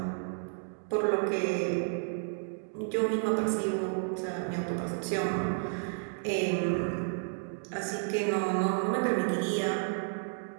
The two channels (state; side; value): silent; left; digital silence